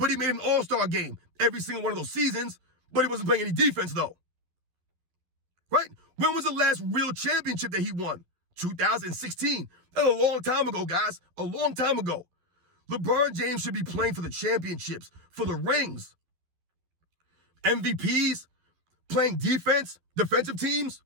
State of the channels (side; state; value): left; late; 12 ms